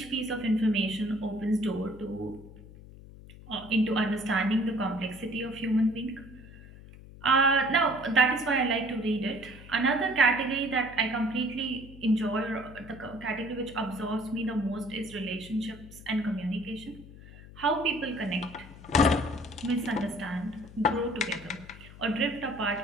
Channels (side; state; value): left; noise; hum, 18 dB below the sound